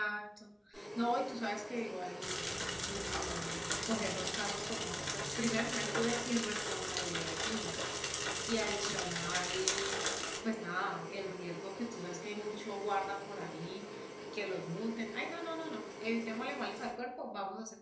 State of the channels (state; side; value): identical; both; correlation 1.00